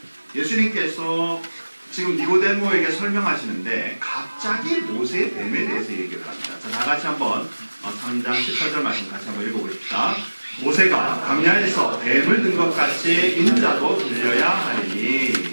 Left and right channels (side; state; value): both; inverted; correlation -1.00